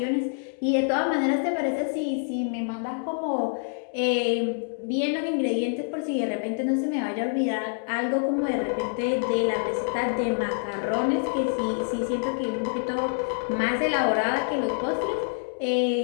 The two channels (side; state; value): right; silent; 61 dB below the other